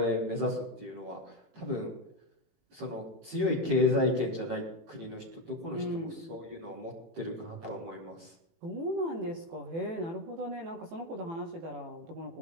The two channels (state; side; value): late; left; 18 ms